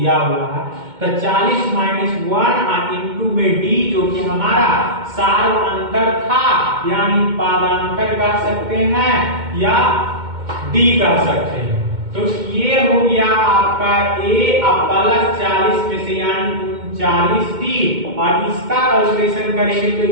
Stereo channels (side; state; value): left; late; 2.1 ms